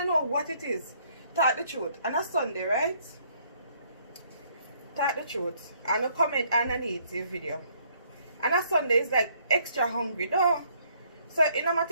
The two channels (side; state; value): both; inverted; correlation -0.66